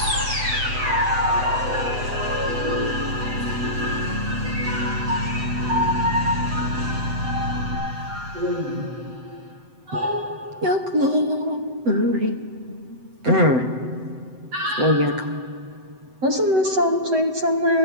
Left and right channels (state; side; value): late; left; 7.9 ms